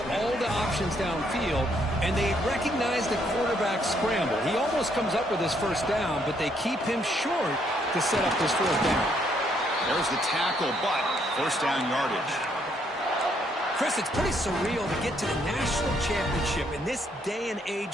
all the options downfield, and they recognize the quarterback scramble. He almost comes up with his first down, but they keep him short to set up this 4th down. There's the tackle, but first down yardage. Chris, it's pretty surreal to get to the national championship in this day and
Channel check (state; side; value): normal; both; correlation 0.71